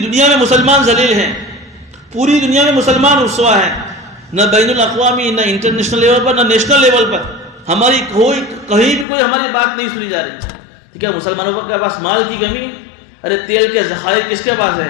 میں مسلمان ذلیل ہیں، پوری دنیا میں مسلمان رسوا ہیں، نہ بین الاقوامی، نہ انٹرنیشنل لیول پر، نہ نیشنل لیول پر ہماری کہیں بھی کوئی ہماری بات نہیں سنی جا رہی۔ ٹھیک ہے، مسلمانوں کے پاس مال کی کمی ہے، ارے تیل کے ذخائر کس کے پاس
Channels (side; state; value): right; drops out; at 9.1 s